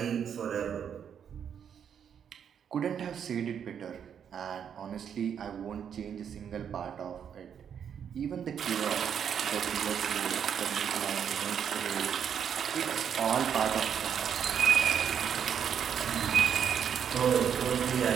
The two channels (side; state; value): left; quieter; 8.1 dB